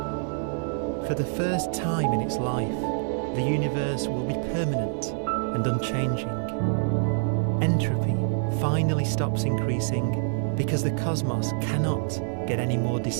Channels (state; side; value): silent; left; 59 dB below the other